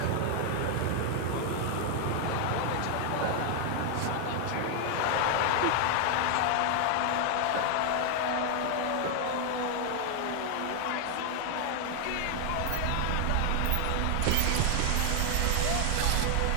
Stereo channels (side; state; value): both; different; correlation 0.00